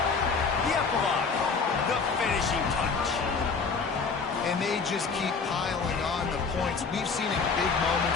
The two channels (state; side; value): quieter; right; 4.9 dB